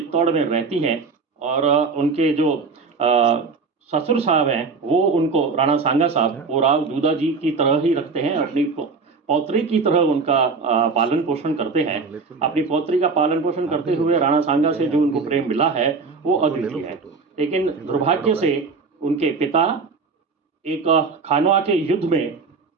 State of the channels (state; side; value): quieter; left; 4.6 dB